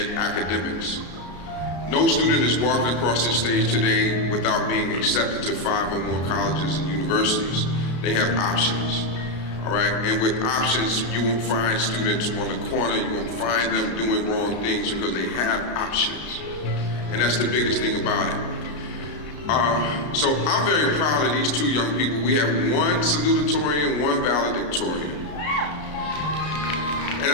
academics. No student is walking across this stage today without being accepted to 5 or more colleges and universities. They have options, all right? And with options, you won't find students on the corner, you won't find them doing wrong things because they have options. And that's the biggest thing about it. So I'm very proud of these two young people. We have one salutatory and one valedictorian. And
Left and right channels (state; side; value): late; right; 33 ms